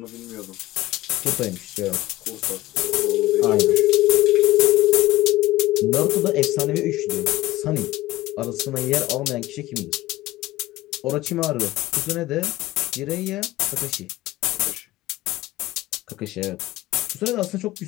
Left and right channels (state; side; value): quieter; right; 17.3 dB